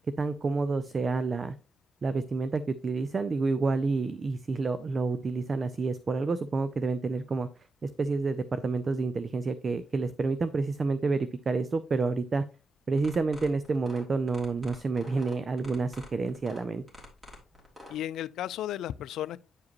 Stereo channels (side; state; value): left; quieter; 3.1 dB